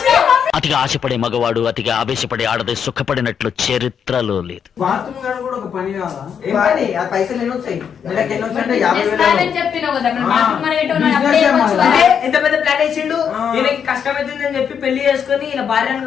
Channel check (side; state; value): right; quieter; 7.6 dB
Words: అతిగా ఆశపడే మగవాడు అతిగా ఆవేశపడే ఆడది సుఖపడినట్లు చరిత్రలో లేదు. బాత్రూమ్ గారు కూడా ఒక పని కాదా? ఏం పని? ఆ పైసలు ఎన్ని వచ్చాయి? నెలకి ఎన్ని వచ్చాయి అంటే 50,000. చేస్తానని చెప్పినావు కదా, మరి బాత్రూమ్ మరి ఏంటో నాకు అప్పుడే ఇవ్వచ్చు కదా. ఎంత పెద్ద ప్లాన్ వేసిండు. ఈయనకి కష్టమైతుందని చెప్పి పెళ్లి చేసుకుని ఈయన భార్యను